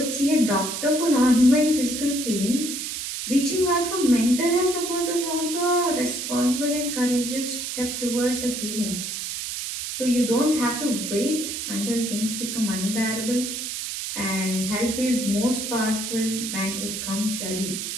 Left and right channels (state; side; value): noise; right; hiss, 5 dB below the sound